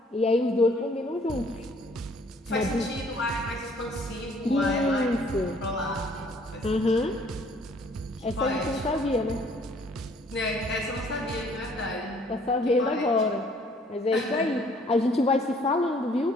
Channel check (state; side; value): normal; both; correlation 0.60